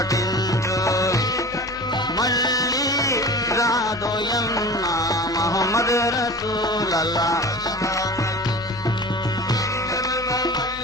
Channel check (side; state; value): both; normal; correlation 0.37